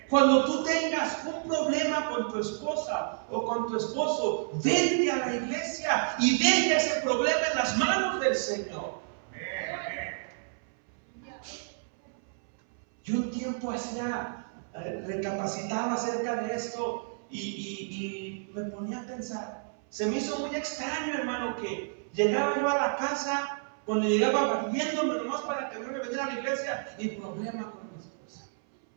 Cuando tú tengas un problema con tu esposa o con tu esposo, vente a la iglesia y deja ese problema en las manos del Señor. Amén, amén. Yo un tiempo recapacitaba acerca de esto y me ponía a pensar. Se me hizo muy extraño, hermano, que llegaba yo a la casa, cuando llegaba barriéndome nomás para que me viniera a la iglesia, y problema con mi esposa,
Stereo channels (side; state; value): left; silent; 58 dB below the other